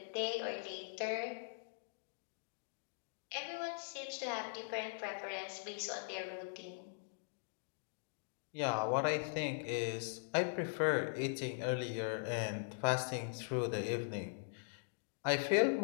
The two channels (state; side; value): silent; right; digital silence